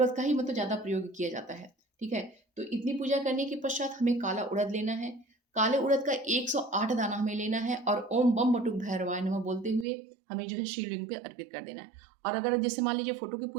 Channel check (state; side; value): drops out; left; at 9.9 s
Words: का ही मतलब ज़्यादा प्रयोग किया जाता है। ठीक है, तो इतनी पूजा करने के पश्चात हमें काला उड़द लेना है। काले उड़द का 108 दाना हमें लेना है, और ओम बम बटुक भैरवाय नमः बोलते हुए हमें जो है शिवलिंग पे अर्पित कर देना है। और अगर जैसे मान लीजिए फोटो की